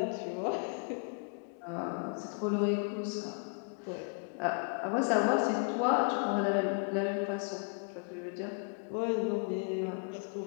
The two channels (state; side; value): quieter; right; 39.5 dB